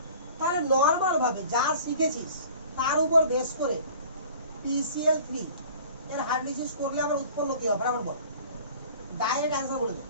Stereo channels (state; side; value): inverted; both; correlation -0.46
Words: তাহলে নরমাল ভাবে যা শিখেছিস তার উপর বেস করে PCl3 এর হাইড্রোলিসিস করলে আমরা উৎপন্ন কি হবে বরাবর বল, ডাইরেক্ট অ্যানসার বলে দে।